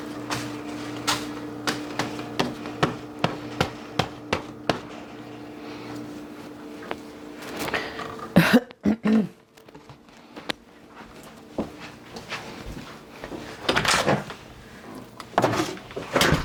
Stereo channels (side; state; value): both; identical; correlation 1.00